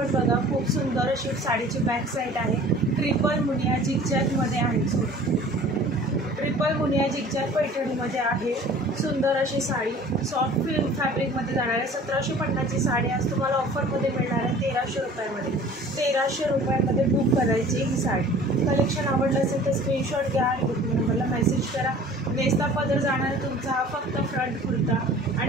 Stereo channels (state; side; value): normal; both; correlation 0.46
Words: बघा, खूप सुंदर अशी साडीची बॅक साईड आहे। ट्रिपल मुनिया जिगजॅगमध्ये आहे, ट्रिपल मुनिया जिगजॅग पैठणीमध्ये आहे। सुंदर अशी साडी सॉफ्ट फॅब्रिकमध्ये जाणार आहे। 1750ची साडी आज तुम्हाला ऑफरमध्ये मिळणार आहे 1300 रुपयामध्ये। 1300 रुपयामध्ये बुक करायची ही साडी। कलेक्शन आवडलं असेल तर स्क्रीनशॉट घ्या आणि बुकिंग नंबरला मेसेज करा। नेस्ता पदर जाणार आहे तुमचा हा फक्त फ्रंट कुर्ता